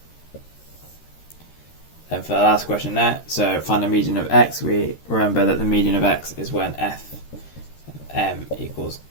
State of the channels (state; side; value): late; right; 13 ms